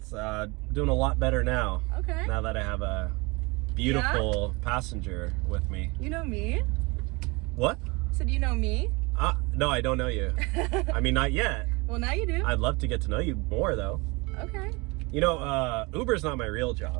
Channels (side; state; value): left; quieter; 26.4 dB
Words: doing a lot better now. Okay. Now that I have a beautiful passenger with me. You know me? What? So do you know me? No, I don't know you. I mean, not yet. Well, now you do. I'd love to get to know you more though. Okay. You know, Uber's not my real